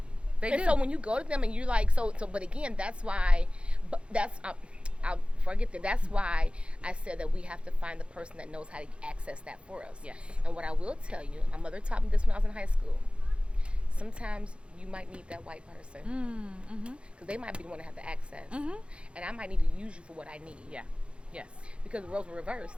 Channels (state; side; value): late; left; 0.058 ms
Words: So when you go to them and you're like, but again, that's why, I'll forget that. That's why I said that we have to find the person that knows how to access that for us. Yes. And what I will tell you, my mother taught me this when I was in high school. Sometimes you might need that white person because they might be the one to have the access, and I might need to use you for what I need. Yeah. Yes. Because the roles were reversed.